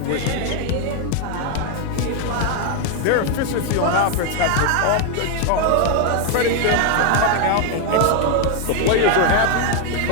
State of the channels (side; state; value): both; different; correlation 0.01